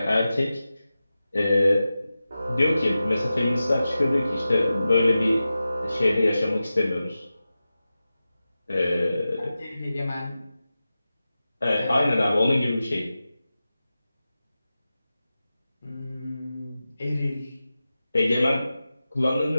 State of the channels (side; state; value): both; inverted; correlation -0.94